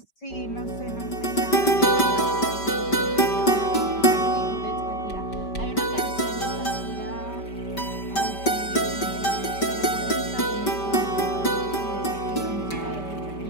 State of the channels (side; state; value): right; late; 5.2 ms